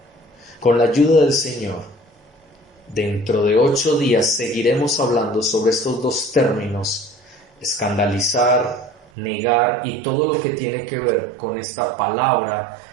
Con la ayuda del Señor, dentro de 8 días seguiremos hablando sobre estos dos términos: escandalizar, negar, y todo lo que tiene que ver con esta palabra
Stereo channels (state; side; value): drops out; left; at 9.1 s